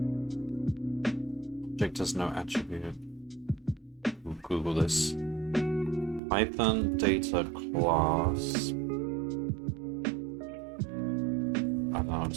Object has no attribute. We'll Google this. Python data class. I don't know,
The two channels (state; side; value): drops out; left; at 6.2 s